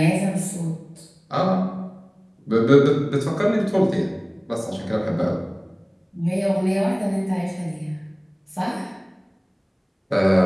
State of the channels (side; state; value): both; identical; correlation 1.00